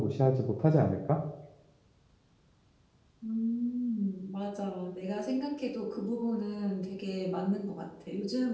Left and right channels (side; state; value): both; identical; correlation 1.00